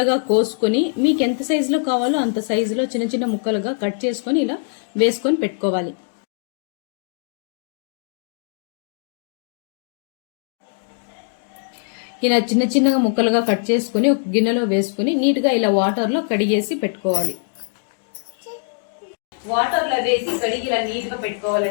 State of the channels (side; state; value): right; silent; digital silence